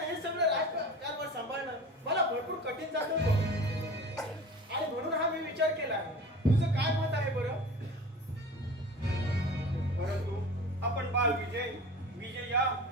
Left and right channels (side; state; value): both; normal; correlation 0.37